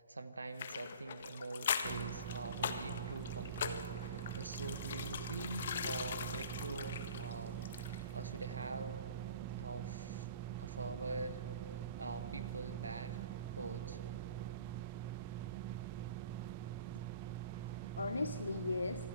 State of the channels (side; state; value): both; inverted; correlation -0.44